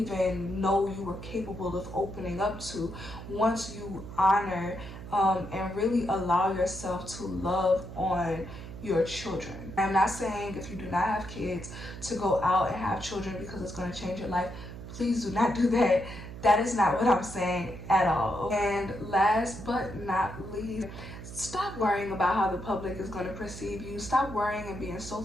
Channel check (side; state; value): right; noise; hum, 11 dB below the sound